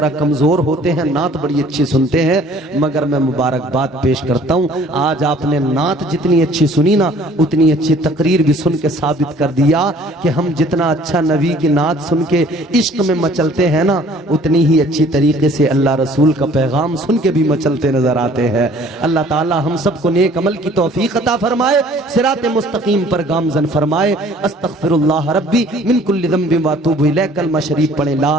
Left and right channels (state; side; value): normal; both; correlation 0.54